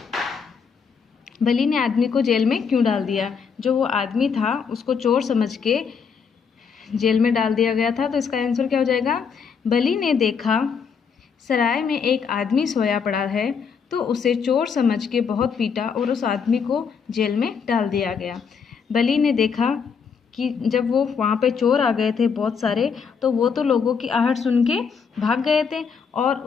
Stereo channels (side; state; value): right; quieter; 6.2 dB